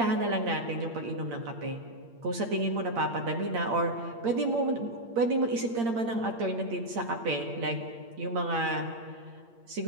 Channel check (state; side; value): late; left; 8.7 ms